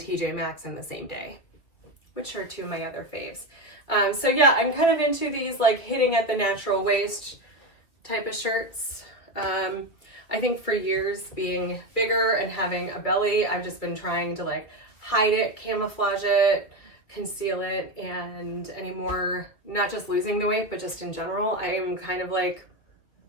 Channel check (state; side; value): late; right; 2.5 ms